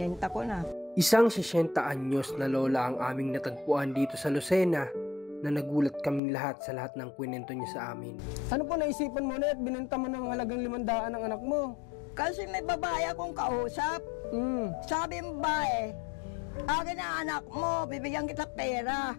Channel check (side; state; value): right; drops out; at 6.2 s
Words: ko na. Isang 60 anyos na lola ang aming natagpuan dito sa Lucena na nagulat kaming lahat sa lahat ng kwento niya sa amin. Ano po naisipan mo na at binenta mo ng halagang 500 ang anak mo? Kasi may babae akong kausap. Sabi ng babae, akin na anak mo, bibigyan kita pera.